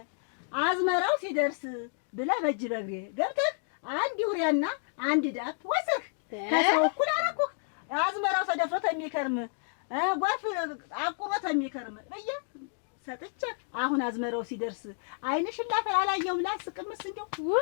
አዝመራው ሲደርስ ብለህ በእጅ በእግሬ ገብተህ አንድ ዩሪያና አንድ ዳፕ ወስህ ከሰው እኩል አደረኩህ። አዝመራው ተደፍሮ የሚከርም ጎርፍ አቁሮት የሚከርም በየ ሰጥቼ አሁን አዝመራው ሲደርስ ዓይንሽን ላፈር አላየሁም ላስቅምስ እንደው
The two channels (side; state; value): right; silent; digital silence